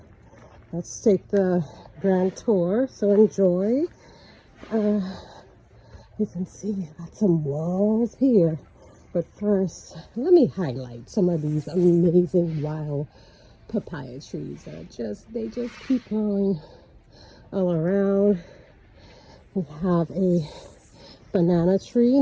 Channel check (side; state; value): both; identical; correlation 1.00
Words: Let's take the grand tour, so enjoy. You can see got some walls here, but first let me highlight some of these amazing wild papaya trees that they just keep growing all around. We have a banana tree.